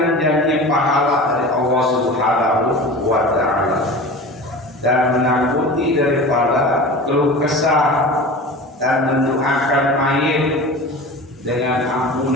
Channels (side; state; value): both; normal; correlation 0.34